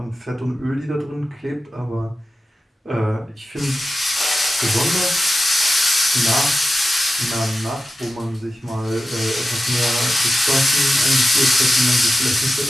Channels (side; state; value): both; normal; correlation 0.92